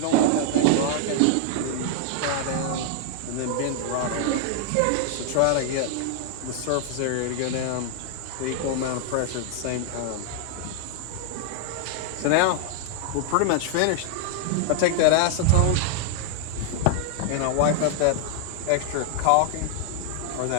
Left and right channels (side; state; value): both; different; correlation -0.01